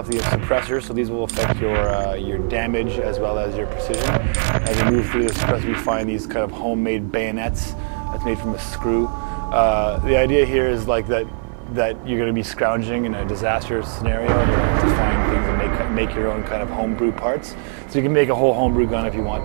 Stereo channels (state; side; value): silent; left; 59 dB below the other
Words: the suppressors. So these will affect your damage as well as your precision. As we move through the suppressor, we find these kind of homemade bayonets that's made from a screw. The idea here is like that you're going to be scrounging in a disaster scenario and you're going to find things and make your own kind of homebrew parts. So you can make a whole homebrew gun if you want